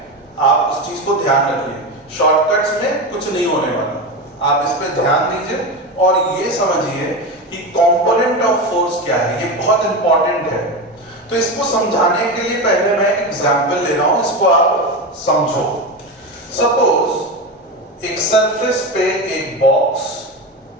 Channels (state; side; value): normal; both; correlation 0.20